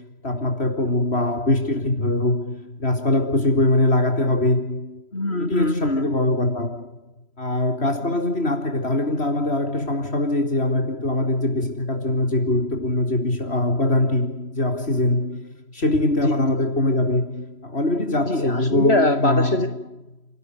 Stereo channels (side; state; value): right; late; 3.0 ms